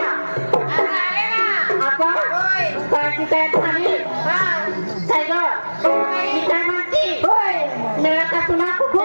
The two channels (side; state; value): both; inverted; correlation -1.00